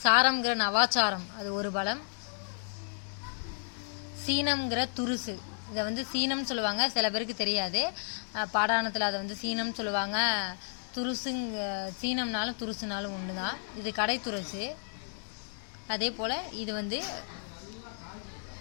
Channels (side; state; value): right; silent; 56 dB below the other